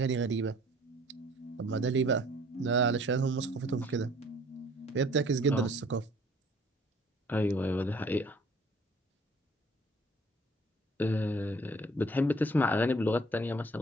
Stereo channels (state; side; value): normal; both; correlation 0.55